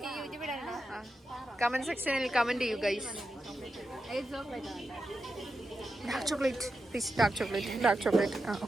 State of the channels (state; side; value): normal; both; correlation 0.89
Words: കമന്റ് സെക്ഷനിൽ കമന്റ് ചെയ്യൂ guys. Dark chocolate please. Dark chocolate.